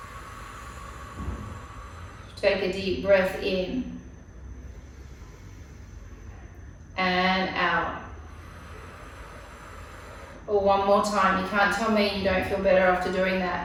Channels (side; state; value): both; identical; correlation 1.00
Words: Take a deep breath in and out. Or one more time. You can't tell me you don't feel better after doing